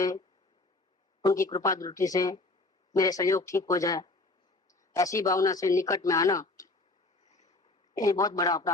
उनकी कृपा दृष्टि से मेरे सहयोग ठीक हो जाए, ऐसी भावना से निकट में आना ये बहुत बड़ा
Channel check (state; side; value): quieter; right; 3.1 dB